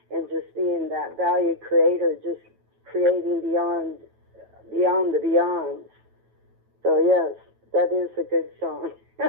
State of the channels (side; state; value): left; late; 9.1 ms